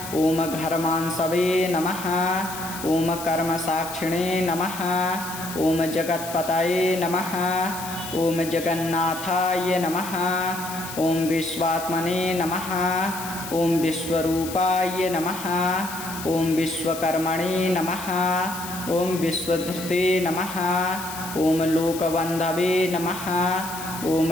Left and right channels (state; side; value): noise; left; hiss, 11 dB below the sound